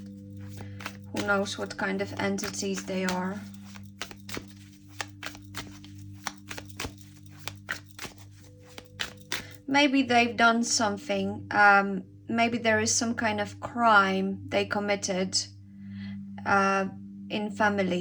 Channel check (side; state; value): both; identical; correlation 1.00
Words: Who knows what kind of entities they are. Maybe they've done something. Maybe there is some kind of crime they committed in